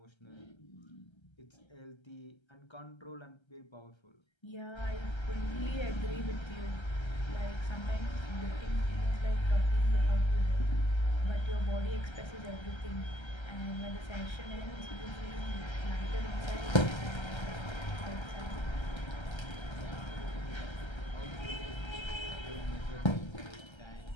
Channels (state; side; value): late; right; 1.3 ms